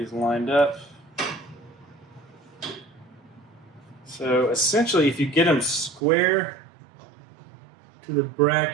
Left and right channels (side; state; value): left; drops out; at 6.0 s